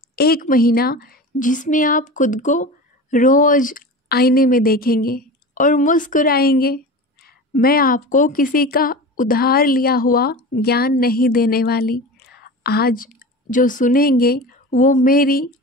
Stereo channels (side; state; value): both; normal; correlation 0.31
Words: 1 महीना जिसमें आप खुद को रोज़ आईने में देखेंगे और मुस्कुराएंगे। मैं आपको किसी का उधार लिया हुआ ज्ञान नहीं देने वाली। आज जो सुनेंगे वो मेरी